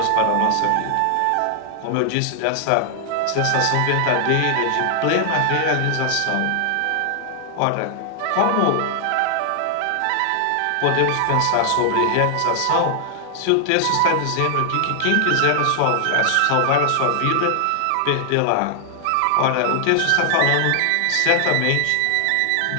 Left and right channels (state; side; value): different; both; correlation 0.00